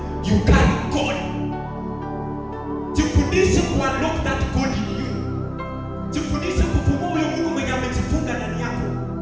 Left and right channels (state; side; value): identical; both; correlation 1.00